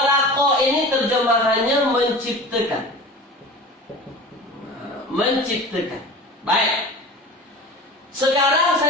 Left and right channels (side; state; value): both; normal; correlation 0.36